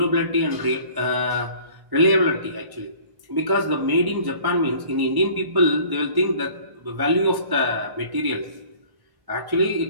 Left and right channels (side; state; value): left; late; 1.1 ms